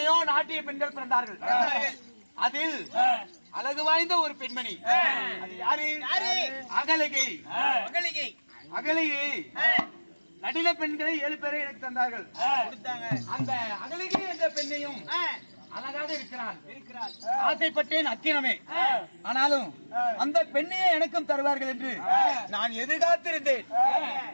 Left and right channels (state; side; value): inverted; both; correlation -1.00